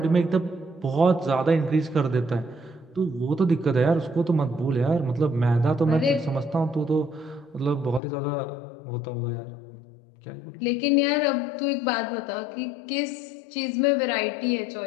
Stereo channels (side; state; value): right; drops out; at 8.0 s